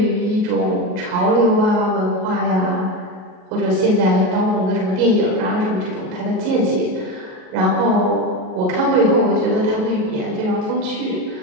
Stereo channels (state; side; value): late; left; 38 ms